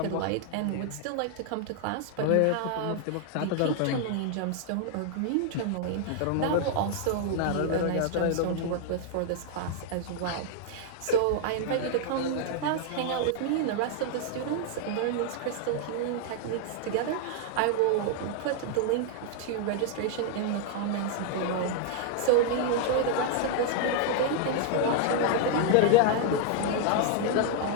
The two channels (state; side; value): different; both; correlation 0.00